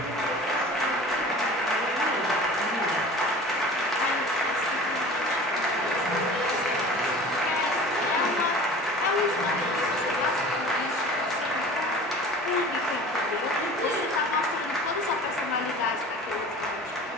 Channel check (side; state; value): both; normal; correlation 0.40